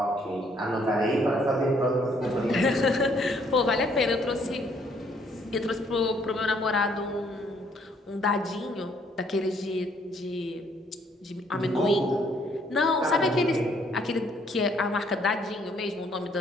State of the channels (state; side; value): normal; both; correlation 0.66